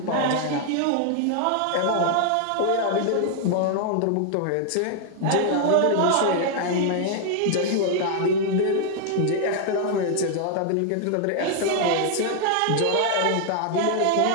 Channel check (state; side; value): different; both; correlation 0.00